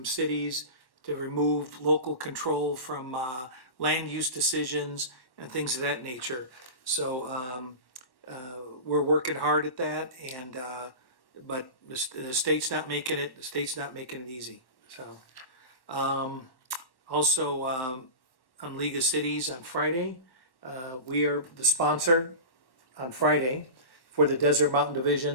cities, to remove local control from land use decisions and things of that nature. So we're working hard at that, and but the state's not making it. The state's not making it easy. So also on League of Cities on Friday, we are the sponsor on Friday for the Desert Mountain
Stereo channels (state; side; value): late; right; 1.1 ms